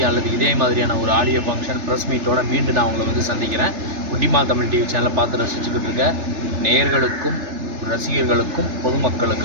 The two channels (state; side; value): late; left; 3.3 ms